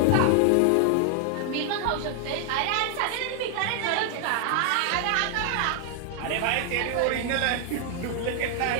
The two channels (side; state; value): both; different; correlation 0.00